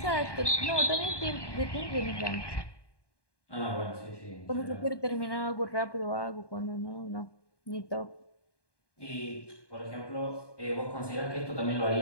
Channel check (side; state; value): right; late; 1.2 ms